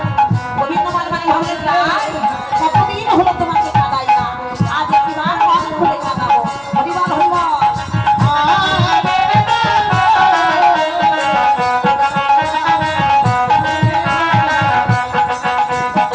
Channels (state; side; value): identical; both; correlation 1.00